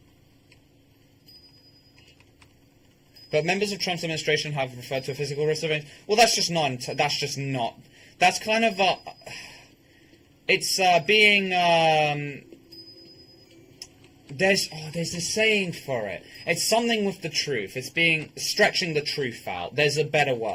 But members of Trump's administration have referred to a physical risk of... Well, that's just not... That's kind of... it's being... There's a saying for it. It's something with the truth. It's being... Stretching the truth out. There's a better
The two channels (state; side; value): identical; both; correlation 1.00